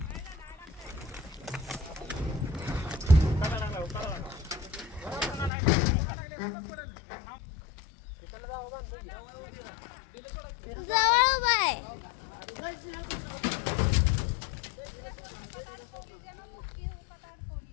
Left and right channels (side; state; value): right; drops out; at 5.5 s